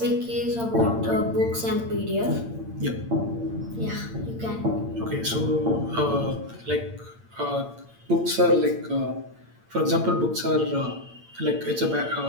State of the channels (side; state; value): left; late; 8.8 ms